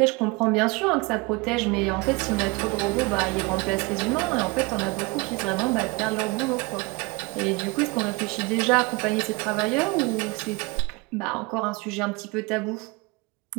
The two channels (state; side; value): quieter; left; 26.6 dB